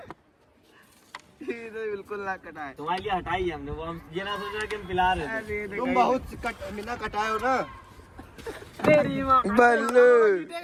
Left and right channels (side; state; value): both; identical; correlation 1.00